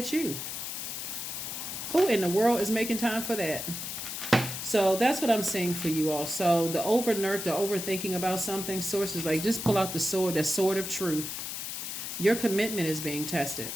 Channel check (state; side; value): noise; left; hiss, 6 dB below the sound